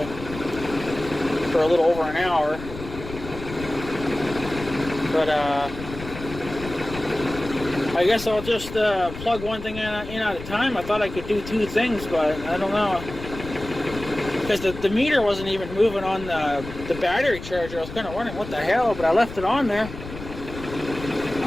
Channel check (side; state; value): left; noise; rumble, 12 dB below the sound